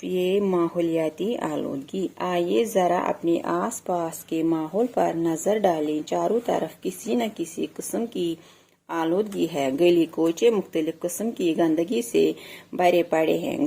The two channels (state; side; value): identical; both; correlation 1.00